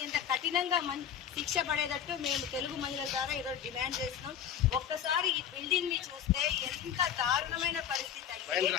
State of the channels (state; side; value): quieter; right; 9.2 dB